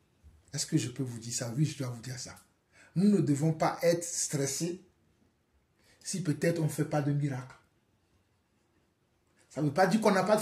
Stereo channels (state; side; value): identical; both; correlation 1.00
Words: est-ce que je peux vous dire ça? Oui, je dois vous dire ça. Nous ne devons pas être stressés si peut-être on ne fait pas de miracle. Ça ne veut pas dire qu'on n'a pas de